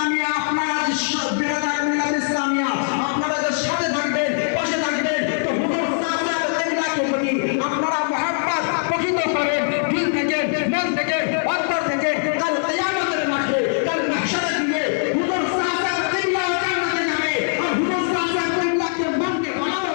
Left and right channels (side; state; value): right; silent; 65 dB below the other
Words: আপনারা যে বিরাদার মিল্লাত ইসলামিয়া আপনারা যে সাথে থাকবেন, পাশে থাকবেন, তো হুজুর সাল্লাল্লাহু আলাইহি ওয়াসাল্লামকে আপনারা মুহাব্বত প্রকৃত করেন দিল থেকে, মন থেকে, অন্তর থেকে। কাল কিয়ামতের মাঠে, কাল মাহশারে দিয়ে হুজুর সাল্লাল্লাহু আলাইহি ওয়াসাল্লাম জান্নাতে যাবে, আর হুজুর সাল্লাল্লাহু আলাইহি ওয়াসাল্লামকে মানবে বানাও